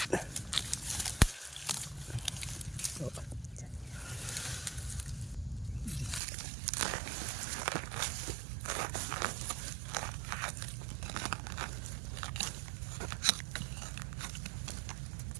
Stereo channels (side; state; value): left; drops out; at 6.2 s